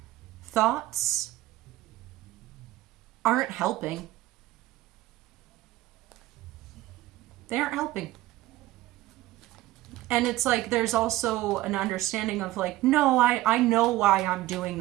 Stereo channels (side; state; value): left; quieter; 16.3 dB